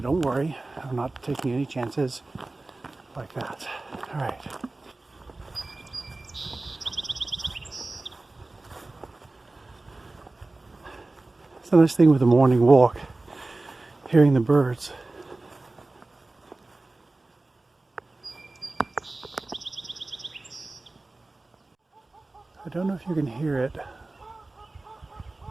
don't worry, I'm not taking any chances like that. All right. The nice thing with a morning walk, hearing the birds. I don't know if you can hear it,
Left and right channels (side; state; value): left; quieter; 3.1 dB